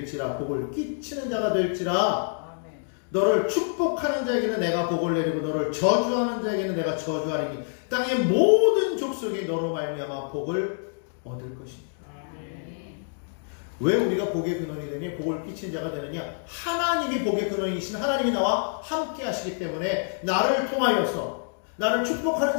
복을 끼치는 자가 될지라. 너를 축복하는 자에게는 내가 복을 내리고 너를 저주하는 자에게는 내가 저주하리니 땅의 모든 족속이 너로 말미암아 복을 얻을 것입니다. 왜 우리가 복의 근원이 되니 복을 끼친 자가 되느냐? 하나님이 복의 근원이신 하나님이 나와 함께 하시기 때문에 나를 통하여서 나를 축복하는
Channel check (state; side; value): silent; right; digital silence